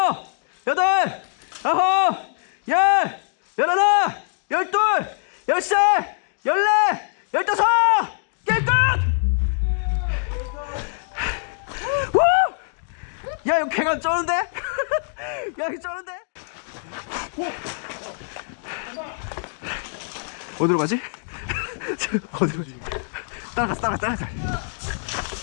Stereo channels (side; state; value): right; silent; digital silence